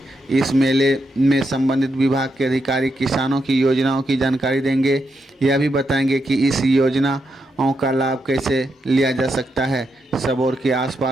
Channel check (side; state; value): both; normal; correlation 0.83